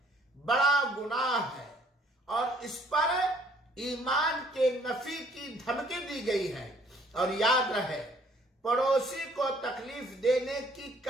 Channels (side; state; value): both; normal; correlation 0.60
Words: بڑا گناہ ہے، اور اس پر ایمان کے نفی کی دھمکی دی گئی ہے. اور یاد رہے، پڑوسی کو تکلیف دینے کی